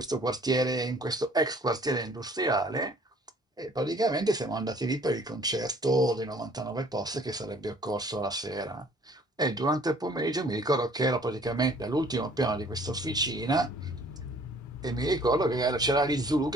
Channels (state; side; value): normal; both; correlation 0.55